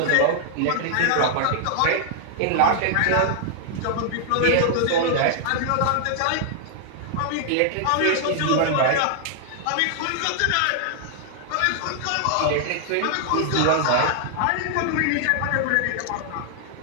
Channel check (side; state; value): both; different; correlation -0.01